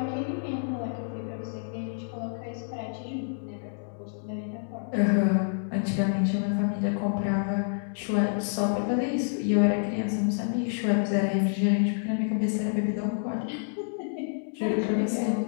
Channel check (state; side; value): silent; right; digital silence